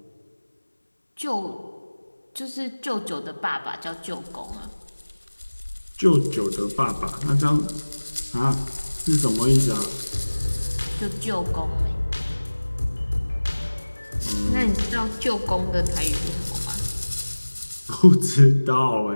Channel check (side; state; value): both; inverted; correlation -1.00